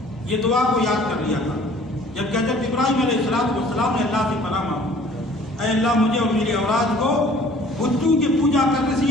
یہ دعا کو یاد کر لیا تھا جب حضرت ابراہیم علیہ السلام نے اللہ سے پناہ مانگی، اے اللہ مجھے اور میری اولاد کو بتوں کی پوجا کرنے سے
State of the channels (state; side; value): normal; both; correlation 0.52